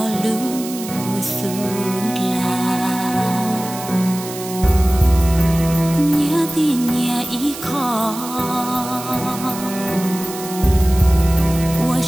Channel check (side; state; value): right; noise; hiss, 12 dB below the sound